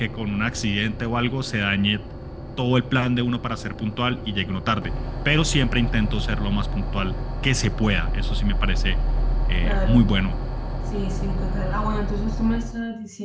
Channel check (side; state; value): both; identical; correlation 1.00